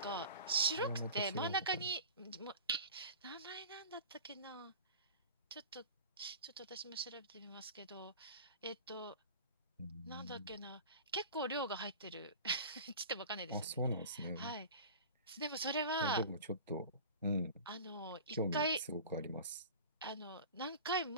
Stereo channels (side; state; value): both; inverted; correlation -0.36